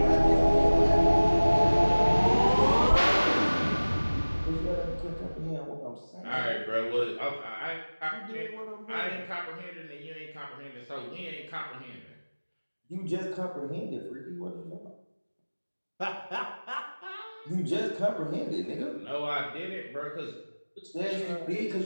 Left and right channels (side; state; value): both; inverted; correlation -1.00